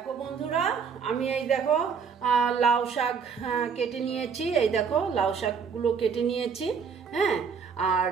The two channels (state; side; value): quieter; left; 6.1 dB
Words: বন্ধুরা, আমি এই দেখো লাউ শাক কেটে নিয়েছি। এই দেখো লাউ শাকগুলো কেটে নিয়েছি। হ্যাঁ, আর